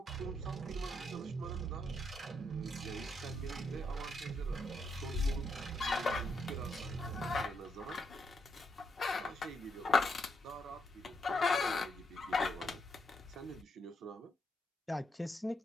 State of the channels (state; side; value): normal; both; correlation 0.78